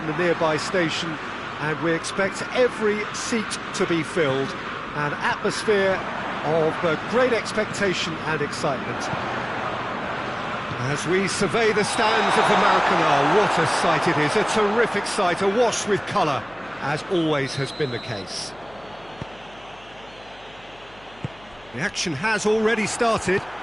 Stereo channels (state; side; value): noise; left; hum, 25 dB below the sound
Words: the nearby station, and we expect every seat to be filled. An atmosphere of great expectation and excitement. As we survey the stands of the Maracanã, what a sight it is, a terrific sight, awash with colour, as always has been the case. The action has already started.